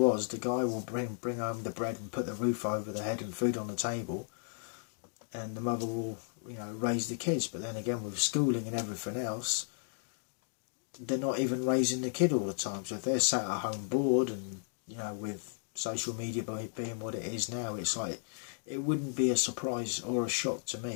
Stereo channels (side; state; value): right; silent; digital silence